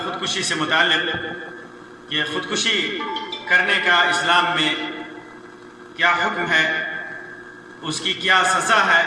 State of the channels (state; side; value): identical; both; correlation 1.00